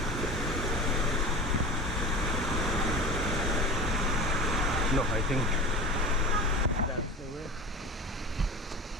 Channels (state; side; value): normal; both; correlation 0.33